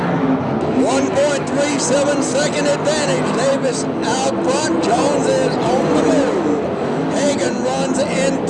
Second advantage. Davis out front. Jones is on the move. Hagan runs in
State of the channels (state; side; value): identical; both; correlation 1.00